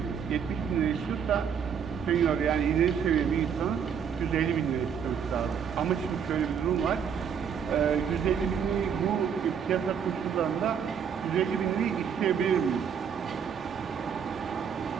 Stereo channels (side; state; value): left; quieter; 7.4 dB